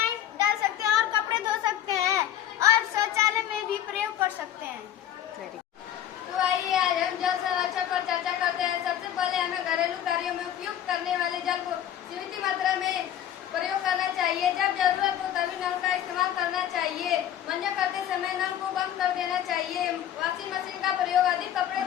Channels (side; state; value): right; quieter; 10.9 dB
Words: डाल सकते हैं और कपड़े धो सकते हैं और शौचालय में भी प्रयोग कर सकते हैं। तो आइए आज हम जल संरक्षण पर चर्चा करते हैं। सबसे पहले हमें घरेलू कार्यों में उपयोग करने वाले जल को सीमित मात्रा में प्रयोग करना चाहिए। जब जरूरत हो तभी नल का इस्तेमाल करना चाहिए। मंजन करते समय नल को बंद कर देना चाहिए। वॉशिंग मशीन का प्रयोग अधिक कपड़े